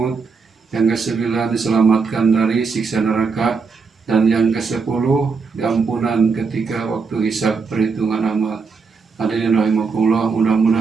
Yang kesembilan, diselamatkan dari siksa neraka. Dan yang kesepuluh, diampunan ketika waktu hisab perhitungan amal. Hadirin rahimakumullah,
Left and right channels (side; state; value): left; quieter; 5.0 dB